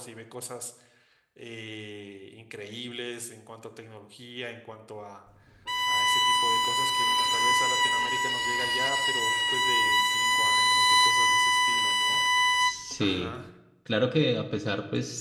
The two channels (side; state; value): both; identical; correlation 1.00